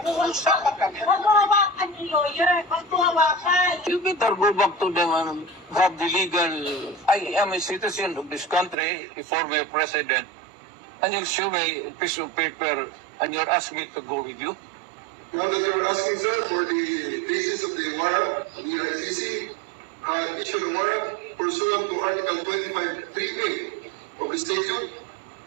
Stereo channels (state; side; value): drops out; left; at 8.8 s